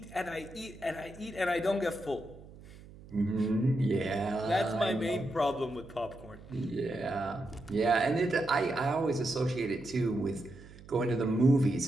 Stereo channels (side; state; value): right; noise; hum, 19 dB below the sound